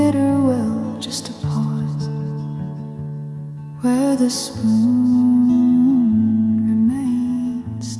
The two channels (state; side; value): identical; both; correlation 1.00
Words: will, just a pause where the spoon remains